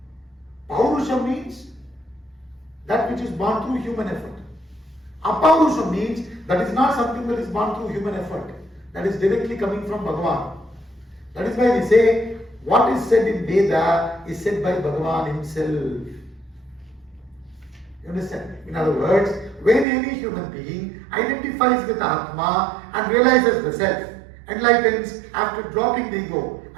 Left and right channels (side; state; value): left; drops out; at 19.9 s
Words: Paurusham means that which is born through human effort. Apaurusham means that is not something that is born through human effort. That is directly coming from Bhagavan. That is why we say what is said in Veda is said by Bhagavan himself. You understand? In other words, when any human being identifies with Atma and realizes the self, enlightens after dropping the ego,